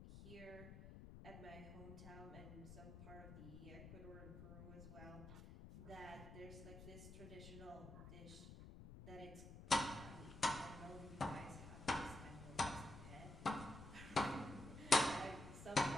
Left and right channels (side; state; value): left; noise; rumble, 13 dB below the sound